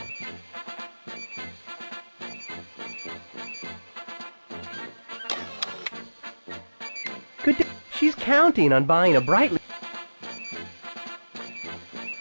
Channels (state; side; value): inverted; both; correlation -1.00